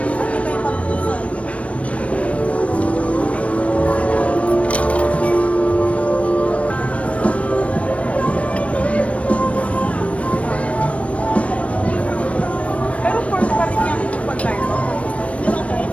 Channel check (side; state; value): right; late; 0.064 ms